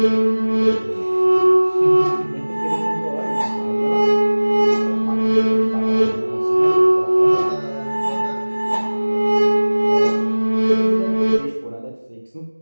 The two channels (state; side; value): inverted; both; correlation -1.00